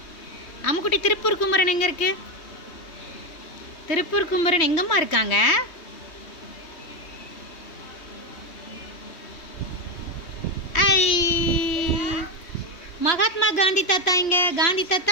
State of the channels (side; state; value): right; late; 3.2 ms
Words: அம்முக்குட்டி, திருப்பூர் குமரன் எங்க இருக்கு? திருப்பூர் குமரன் எங்கம்மா இருக்காங்க? ஐ, மகாத்மா காந்தி தாத்தா எங்க? காந்தி